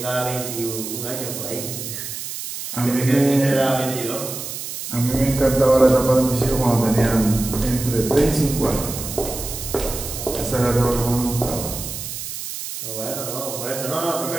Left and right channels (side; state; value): right; noise; hiss, 7 dB below the sound